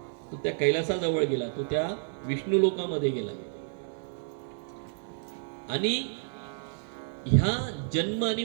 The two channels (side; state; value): left; silent; digital silence